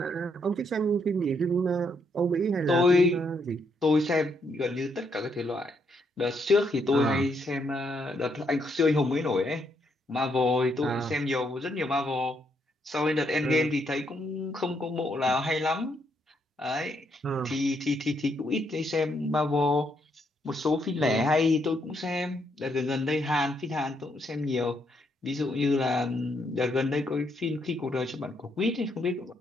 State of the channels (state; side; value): normal; both; correlation 0.75